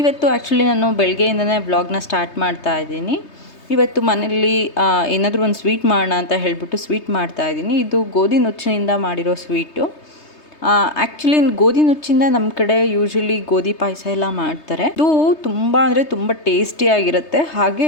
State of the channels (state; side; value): late; right; 3.3 ms